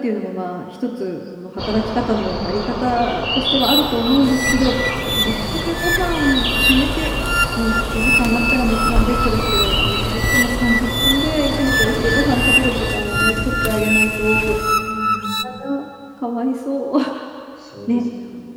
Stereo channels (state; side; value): identical; both; correlation 1.00